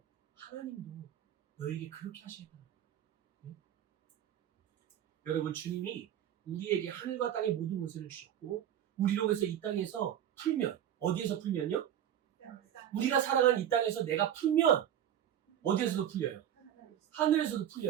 하나님도 너희에게 그렇게 하시겠다는 거예요. 네? 여러분, 주님이 우리에게 하늘과 땅의 모든 것을 주셨고 우리로 해서 이 땅에서 풀면, 어디에서 풀면요? 우리가 살아가는 이 땅에서 내가 풀면 어디에서도 풀려요? 하늘에서도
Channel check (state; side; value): quieter; left; 10.5 dB